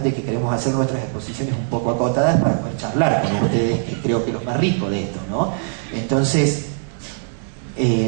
de que queremos hacer nuestras exposiciones un poco acotadas para poder charlar con ustedes, que creo que es lo más rico de esto, ¿no? Entonces,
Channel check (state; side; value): silent; left; digital silence